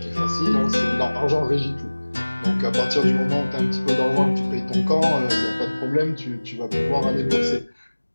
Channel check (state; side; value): inverted; both; correlation -1.00